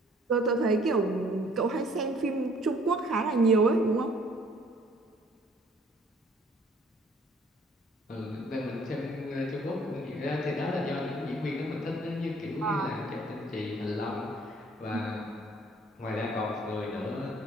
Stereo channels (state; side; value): normal; both; correlation 0.59